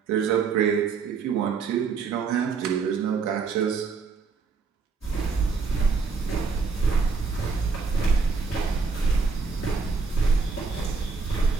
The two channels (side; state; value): left; quieter; 5.0 dB